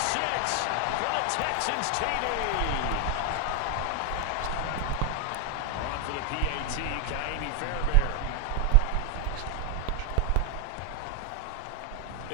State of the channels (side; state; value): both; different; correlation 0.00